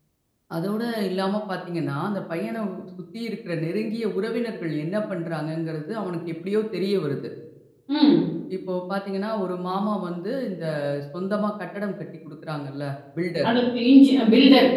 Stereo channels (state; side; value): identical; both; correlation 1.00